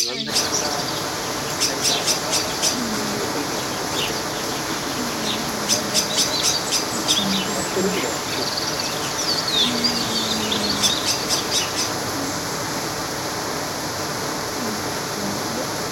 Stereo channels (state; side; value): identical; both; correlation 1.00